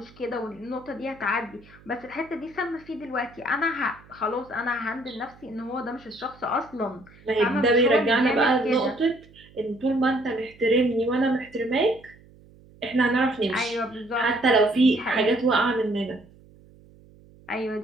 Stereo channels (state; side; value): noise; right; hum, 25 dB below the sound